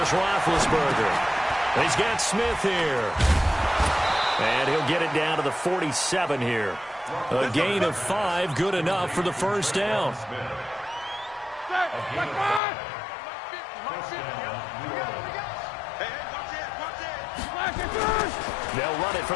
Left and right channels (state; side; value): drops out; right; at 12.6 s